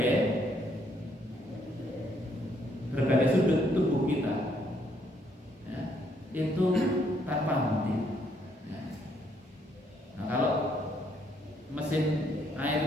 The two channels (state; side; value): normal; both; correlation 0.70